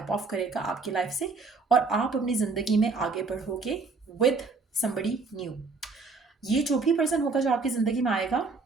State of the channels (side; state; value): left; quieter; 4.2 dB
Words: ऑफ करेगा आपकी लाइफ से और आप अपनी ज़िंदगी में आगे बढ़ोगे विद समबडी न्यू। ये जो भी पर्सन होगा जो आपकी ज़िंदगी में आएगा,